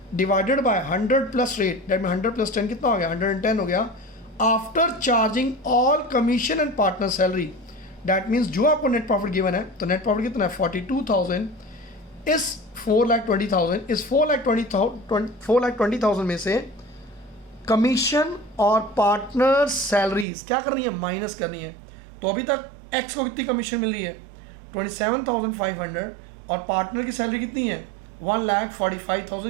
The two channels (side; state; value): left; drops out; at 20.2 s